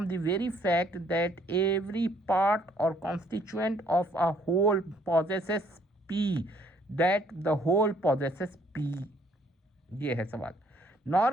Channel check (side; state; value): both; normal; correlation 0.64